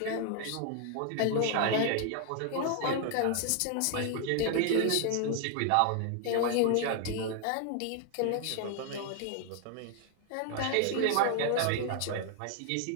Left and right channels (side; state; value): both; different; correlation 0.00